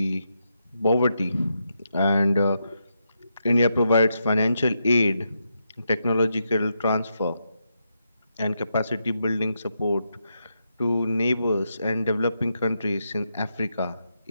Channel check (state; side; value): inverted; both; correlation -0.83